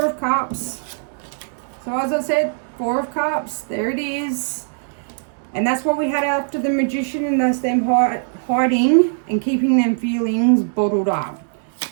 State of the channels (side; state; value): left; silent; 65 dB below the other